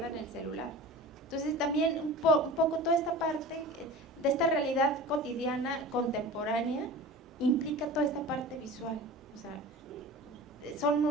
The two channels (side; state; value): both; normal; correlation 0.36